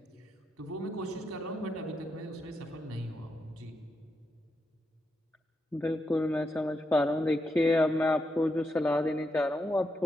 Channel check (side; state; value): both; normal; correlation 0.84